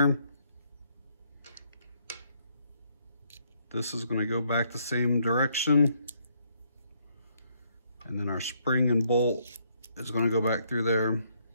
This is gonna go back the same direction. And then our spring and bolt is gonna go back through there.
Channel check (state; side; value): inverted; both; correlation -0.72